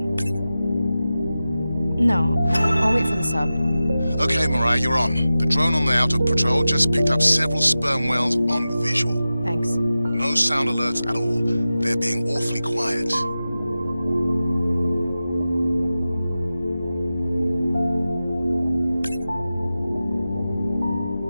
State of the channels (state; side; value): inverted; both; correlation -0.94